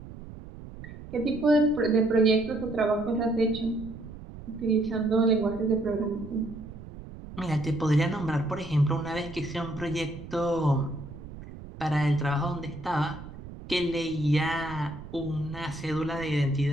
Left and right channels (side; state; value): right; noise; rumble, 14 dB below the sound